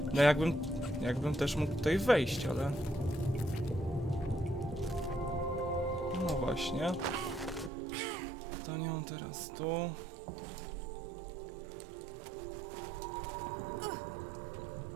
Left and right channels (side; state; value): left; drops out; at 7.7 s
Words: No jakbym też mógł tutaj wejść, ale... No właśnie. To nią teraz tu.